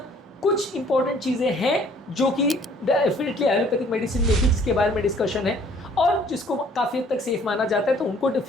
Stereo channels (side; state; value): both; normal; correlation 0.58